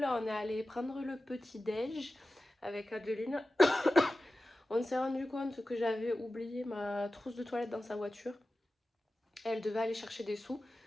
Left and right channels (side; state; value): both; normal; correlation 0.95